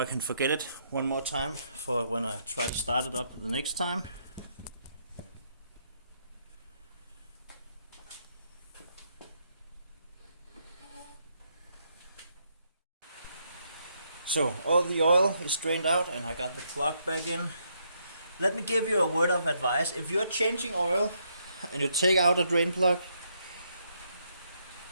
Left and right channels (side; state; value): both; inverted; correlation -0.75